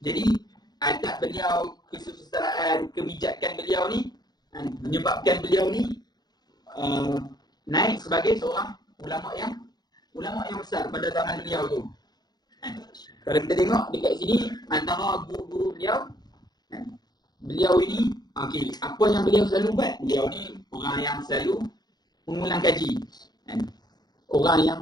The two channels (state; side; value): late; right; 0.20 ms